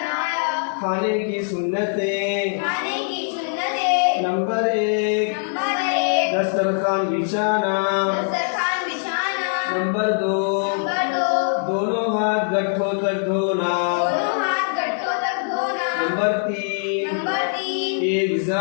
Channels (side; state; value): right; silent; 64 dB below the other